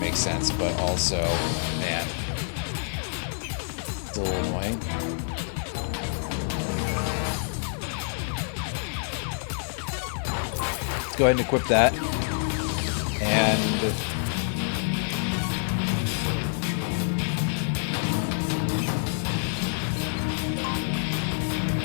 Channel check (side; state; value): right; silent; 60 dB below the other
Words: sense, but also, man, it's a little annoying. Let's go ahead and equip that. And...